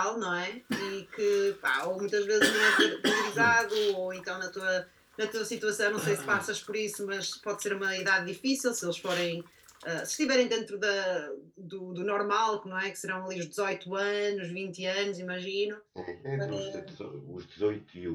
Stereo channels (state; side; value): identical; both; correlation 1.00